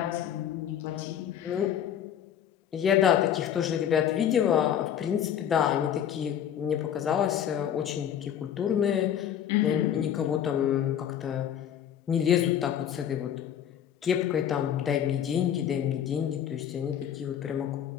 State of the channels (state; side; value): quieter; right; 9.6 dB